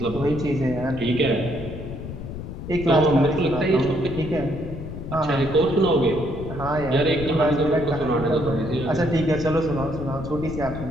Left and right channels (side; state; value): left; noise; rumble, 9 dB below the sound